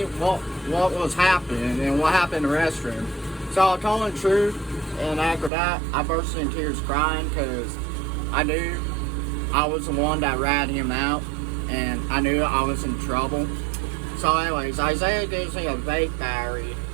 what was happening and what happened in the restroom. So I told him the truth, and after that, I burst into tears crying because I knew I was the one that ratted him out, and I knew I was in trouble. So anyways, Isaiah gives me a vape battery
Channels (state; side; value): drops out; left; at 5.5 s